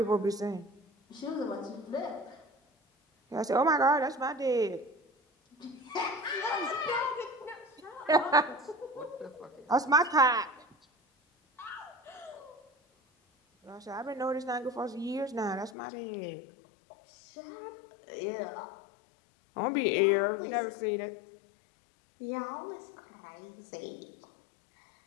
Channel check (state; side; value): drops out; right; at 15.8 s